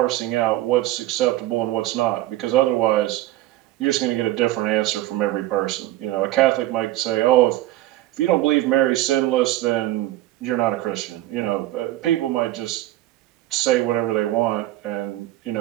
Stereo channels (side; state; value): left; quieter; 15.7 dB